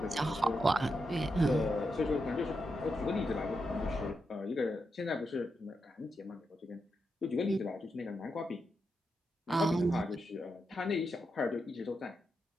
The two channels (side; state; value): both; normal; correlation 0.85